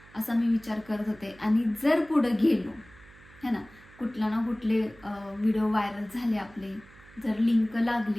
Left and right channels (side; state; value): right; noise; hum, 24 dB below the sound